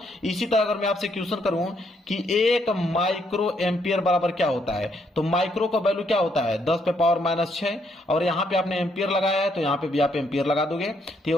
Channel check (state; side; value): normal; both; correlation 0.73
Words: इसी तरह अगर मैं आपसे क्वेश्चन करूं कि 1 माइक्रो एम्पियर बराबर क्या होता है, तो माइक्रो का वैल्यू क्या होता है 10 पे पावर माइनस 6, और यहां पे आपने एम्पियर लगाया है तो यहां पे भी आप एम्पियर लगा दोगे तो ये